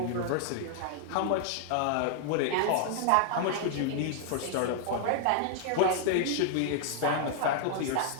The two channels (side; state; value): both; different; correlation -0.01